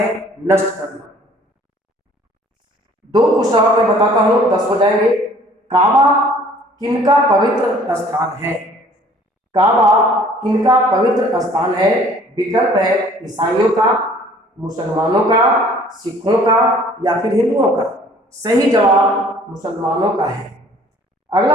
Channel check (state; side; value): normal; both; correlation 0.54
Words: नष्ट करना। दो क्वेश्चन और मैं बताता हूं, 10 हो जाएंगे। काबा किनका पवित्र स्थान है? काबा किनका पवित्र स्थान है? विकल्प है ईसाइयों का, मुसलमानों का, सिखों का, या फिर हिंदुओं का। सही जवाब मुसलमानों का है।